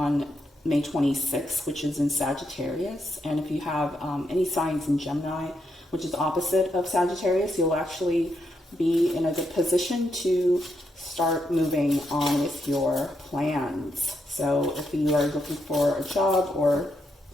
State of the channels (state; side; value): normal; both; correlation 0.81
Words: May 26th, which is in Sagittarius. And if you have any signs in Gemini, which is opposite of Sagittarius, you'll actually be in a good position to start moving on with your plans. So if you are looking for a job or